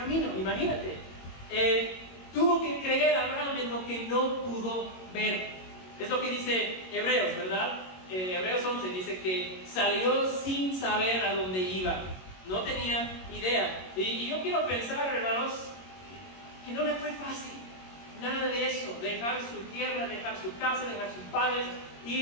imagínate. Tuvo que creer Abraham en lo que no pudo ver. Es lo que dice Hebreos, ¿verdad? Hebreos 11 dice que salió sin saber a dónde iba. No tenía idea. Y yo quiero pensar, hermanos, que no le fue fácil. Nada de eso, dejar su tierra, dejar su casa, dejar sus padres,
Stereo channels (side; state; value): right; late; 22 ms